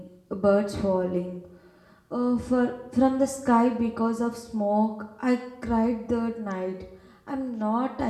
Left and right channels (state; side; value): identical; both; correlation 1.00